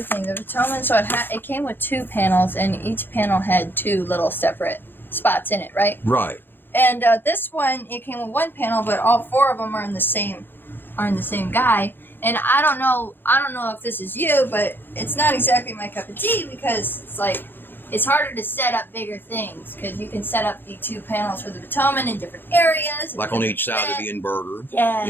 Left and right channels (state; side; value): late; right; 0.098 ms